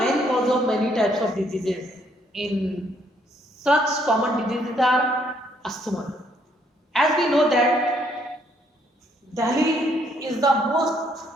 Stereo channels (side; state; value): both; normal; correlation 0.69